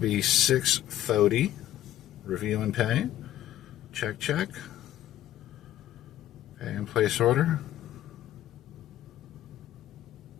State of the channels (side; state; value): right; quieter; 13.0 dB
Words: $6.30. Review and pay. Check, check. Pay and place order.